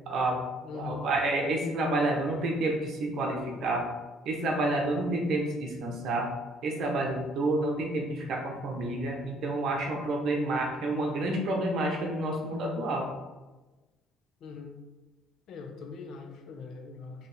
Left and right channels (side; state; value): both; normal; correlation 0.63